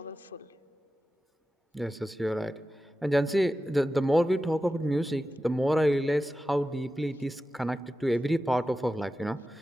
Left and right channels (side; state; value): both; normal; correlation 0.93